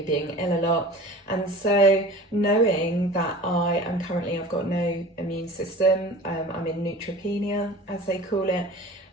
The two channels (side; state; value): both; normal; correlation 0.40